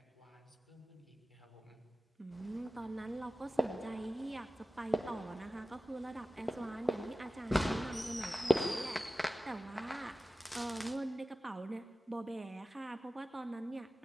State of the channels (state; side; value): normal; both; correlation 0.96